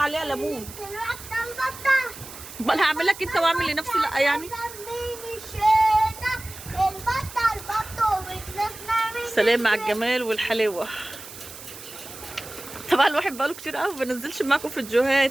ليمون. امال هعمل لك انت واعمل لنفسي لا يعني؟ سلام على الجمال والحلاوه. طبعا الواحد بقاله كتير قوي ما بنزلش معاكم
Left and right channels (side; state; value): right; noise; hiss, 15 dB below the sound